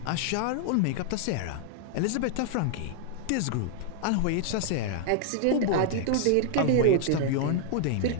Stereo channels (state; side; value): different; both; correlation 0.00